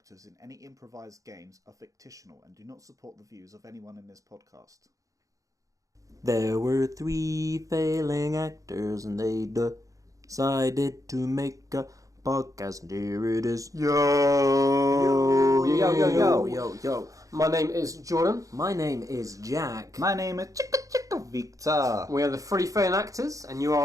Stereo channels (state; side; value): late; left; 0.16 ms